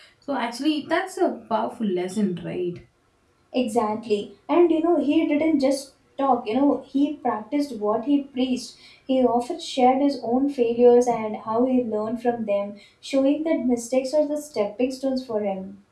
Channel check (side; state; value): both; identical; correlation 1.00